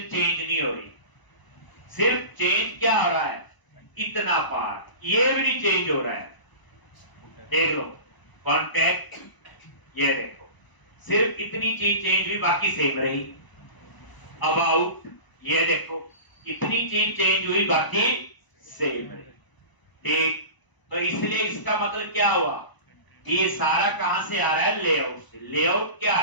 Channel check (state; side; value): late; right; 1.0 ms